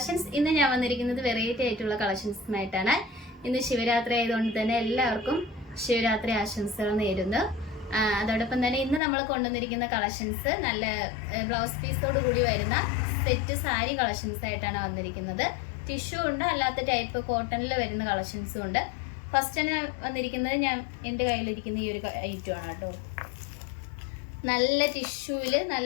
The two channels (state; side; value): drops out; right; at 9.0 s